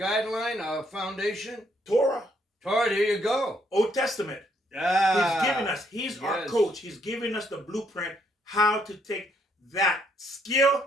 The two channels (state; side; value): normal; both; correlation 0.71